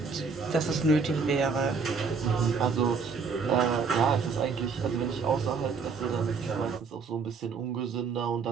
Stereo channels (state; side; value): quieter; left; 5.2 dB